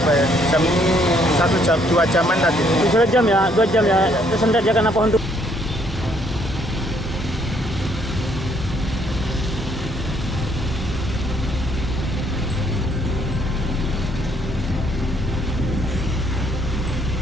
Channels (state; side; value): normal; both; correlation 0.67